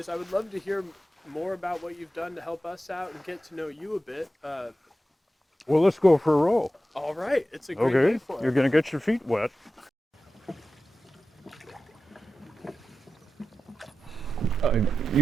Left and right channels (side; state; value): both; normal; correlation 0.92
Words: I would love to hear more about what you've done to help us out and get to know you a bit. Well, let's go for a row. All right, it's a great day for it. You're going to get your feet wet. I